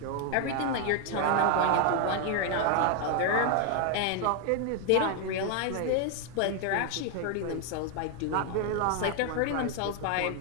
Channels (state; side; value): different; both; correlation 0.00